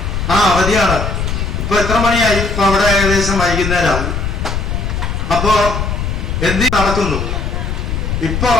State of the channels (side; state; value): left; noise; rumble, 2 dB below the sound